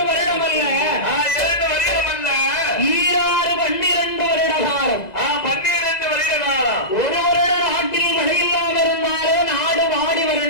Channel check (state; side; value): late; right; 2.0 ms